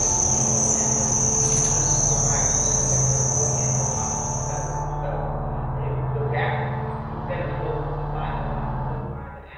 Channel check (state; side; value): identical; both; correlation 1.00